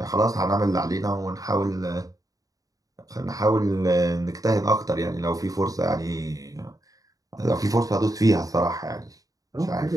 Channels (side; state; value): left; late; 0.17 ms